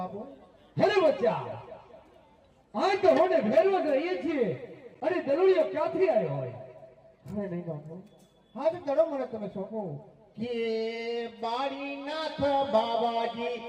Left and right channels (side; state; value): both; identical; correlation 1.00